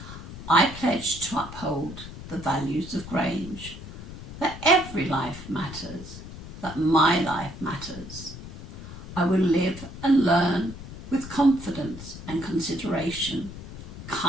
I pledge to uphold the values of Grange, that every life matters, that my life matters. I will live and learn with confidence and consideration.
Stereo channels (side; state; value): left; noise; rumble, 12 dB below the sound